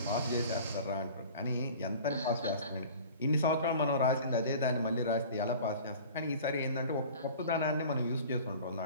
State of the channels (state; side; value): inverted; both; correlation -0.42